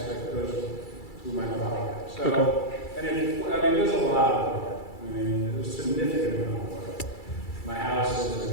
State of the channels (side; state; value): right; late; 2.3 ms